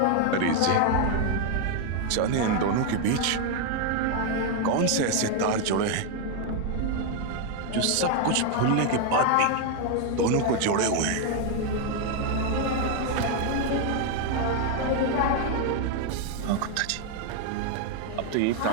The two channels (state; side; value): different; both; correlation 0.01